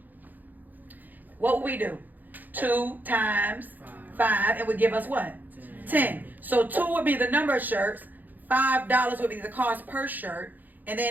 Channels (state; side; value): late; left; 0.085 ms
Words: What would we do? 2 times 5, it would give us what? 10. So 2 would be the number of shirts, $5 would be the cost per shirt, and